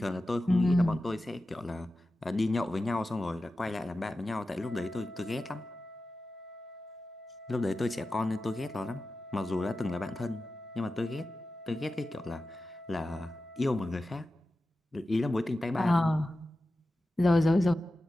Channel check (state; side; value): normal; both; correlation 0.93